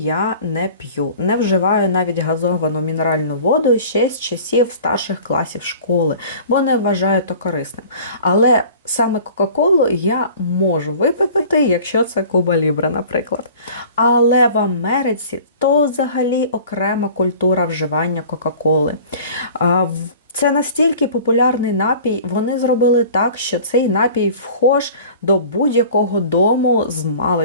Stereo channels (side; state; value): both; inverted; correlation -0.45